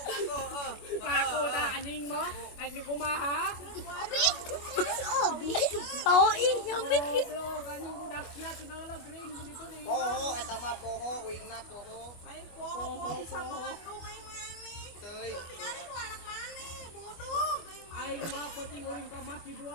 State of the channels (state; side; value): late; right; 25 ms